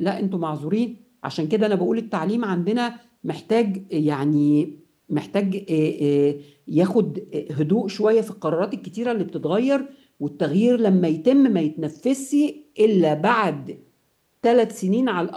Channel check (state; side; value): identical; both; correlation 1.00